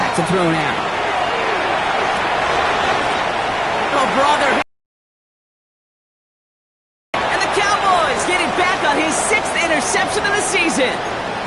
to throw now. Oh, brother. And the Cowboys getting back on his 6th interception of the season.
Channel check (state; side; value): identical; both; correlation 1.00